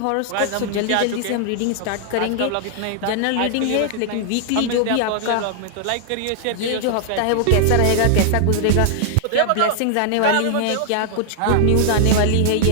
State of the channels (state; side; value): different; both; correlation 0.00